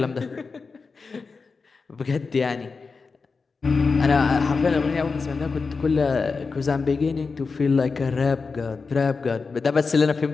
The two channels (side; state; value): right; quieter; 4.6 dB